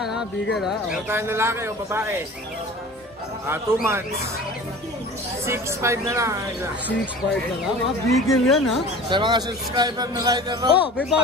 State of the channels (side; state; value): both; normal; correlation 0.40